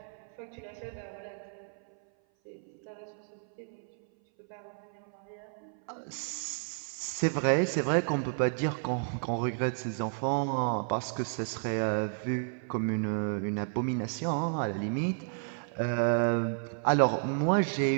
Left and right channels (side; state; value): left; silent; 57 dB below the other